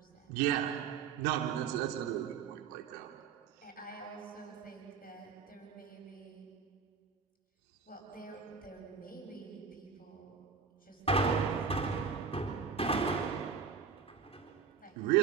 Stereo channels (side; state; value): left; quieter; 6.1 dB